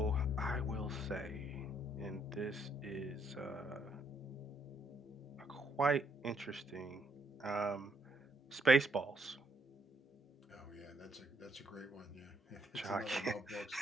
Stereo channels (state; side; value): normal; both; correlation 0.72